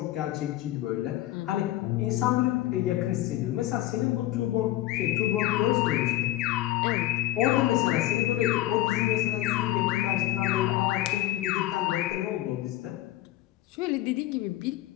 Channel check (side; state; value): right; quieter; 15.3 dB